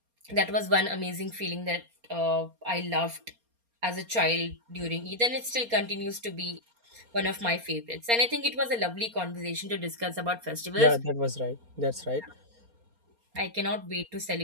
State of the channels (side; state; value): left; late; 4.3 ms